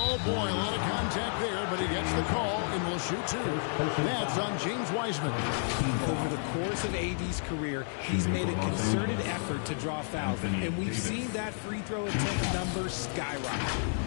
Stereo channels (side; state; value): right; silent; digital silence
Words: boy, a lot of contact there, but he gets the call and will shoot 2. That's on James Wiseman. Over the course of AD's career, he's made a concerted effort to draw fouls, and we've seen that free throw attempt number